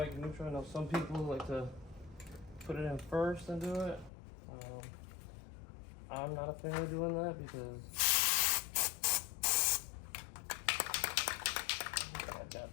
neutral. I know some people like to put it in first and do it. I'm not a fan of doing that because I got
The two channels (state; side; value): drops out; right; at 4.1 s